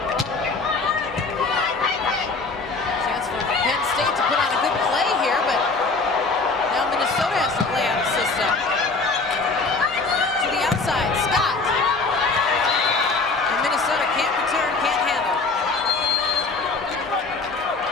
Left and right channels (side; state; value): right; quieter; 3.9 dB